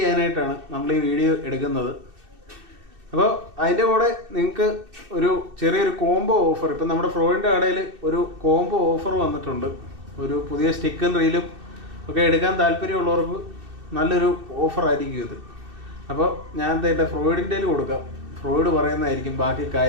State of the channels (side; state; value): left; late; 2.6 ms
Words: നമ്മൾ ഈ വീഡിയോ എടുക്കുന്നത്. അപ്പോൾ അതിൻ്റെ കൂടെ നിങ്ങൾക്ക് ഒരു ചെറിയൊരു കോംബോ ഓഫർ, ഇപ്പം നമ്മുടെ ഫ്രോയിഡിൻ്റെ കടയിൽ ഒരു കോംബോ ഓഫർ വന്നിട്ടുണ്ട്. ഒരു പുതിയ സ്റ്റിക്കും റീലും ഒക്കെ എടുക്കാൻ താല്പര്യമുള്ളവർക്ക് നല്ലൊരു ഓഫറായിരിക്കും ഇത്. അപ്പോൾ ഞാൻ എന്താ ഫ്രോയിഡിൻ്റെ കൊടുക്കാം, ഫ്രോയിഡ് പറയുന്നതായിരിക്കും ബാക്കി